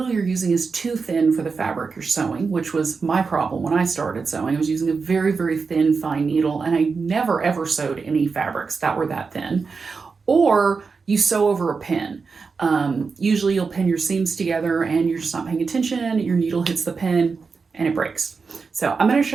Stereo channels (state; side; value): quieter; left; 4.9 dB